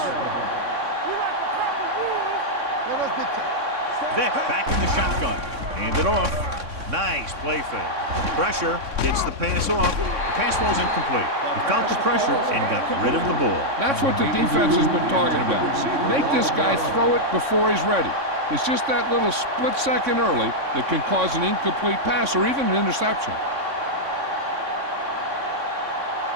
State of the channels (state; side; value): late; left; 3.6 ms